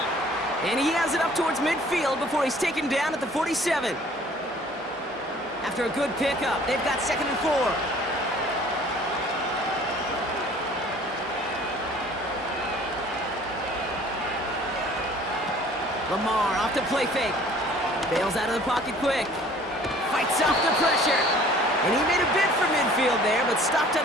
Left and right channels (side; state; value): both; normal; correlation 0.52